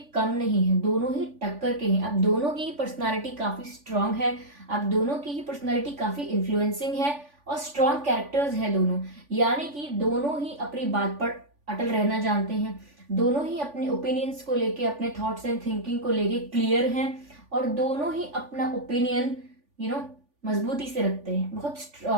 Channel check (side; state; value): left; late; 3.5 ms